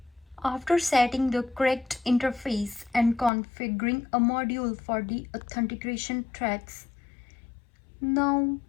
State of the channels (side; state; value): right; drops out; at 3.3 s